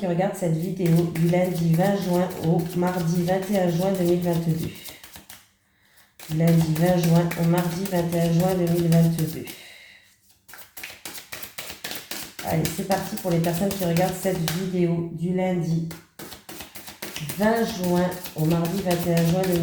regardent cette vidéo du lundi 20 juin au mardi 21 juin 2022. Lundi 20 juin au mardi 21 juin 2022. Allez, c'est parti pour les personnes qui regardent cette vidéo du lundi 20 juin au mardi 21 juin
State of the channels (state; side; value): identical; both; correlation 1.00